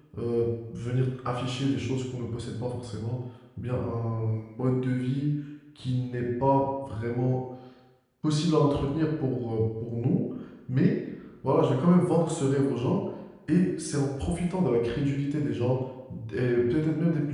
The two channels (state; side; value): identical; both; correlation 1.00